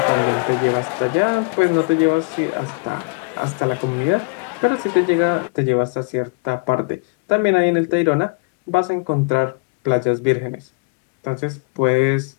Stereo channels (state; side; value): quieter; right; 31.7 dB